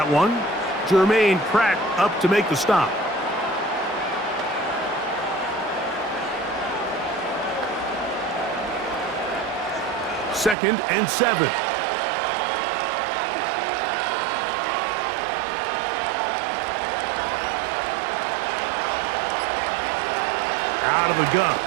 one. Jermaine Pratt up to make the stop. Second and 7. Out of the gun.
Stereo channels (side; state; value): left; drops out; at 10.6 s